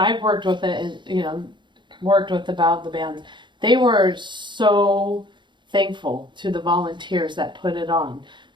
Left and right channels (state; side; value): late; left; 0.23 ms